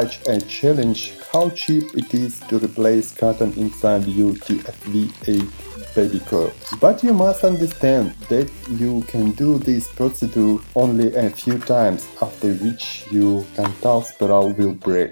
a challenge how cheap it is to replace cotton inside your TFV8 Baby Coil. But you must understand that you can do this procedure only a few times, after which your tensile spiral will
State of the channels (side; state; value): both; inverted; correlation -1.00